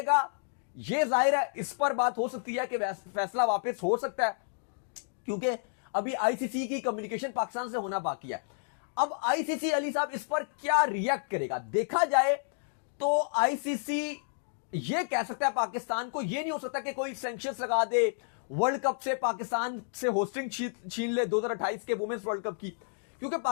यह जाहिर है, इस पर बात हो सकती है कि फैसला वापस हो सकता है, क्योंकि अभी आईसीसी की कम्युनिकेशन पाकिस्तान से होना बाकी है। अब आईसीसी अली साहब इस पर क्या रिएक्ट करेगा? देखा जाए तो आईसीसी ये कह सकता है पाकिस्तान को, ये नहीं हो सकता कि कोई सैंक्शंस लगा दे, वर्ल्ड कप से पाकिस्तान से होस्टिंग छीन ले 2028 के वुमेन्स वर्ल्ड कप की, क्योंकि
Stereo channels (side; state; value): right; silent; digital silence